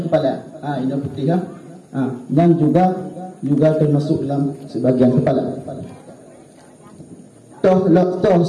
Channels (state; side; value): identical; both; correlation 1.00